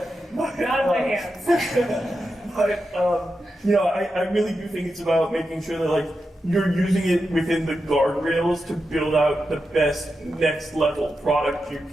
Not in my hands. I really do think it's about making sure that you're using it within the guardrails to build out the best next level product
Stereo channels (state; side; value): normal; both; correlation 0.89